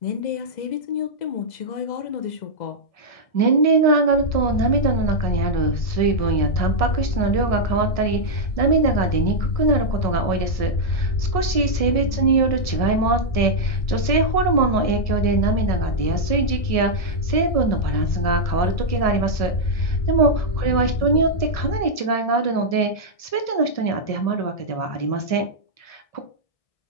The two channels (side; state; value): right; late; 1.6 ms